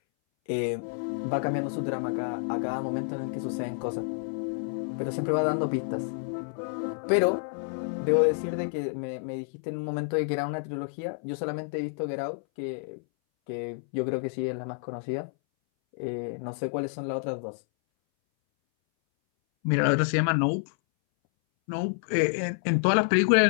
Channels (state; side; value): silent; right; 59 dB below the other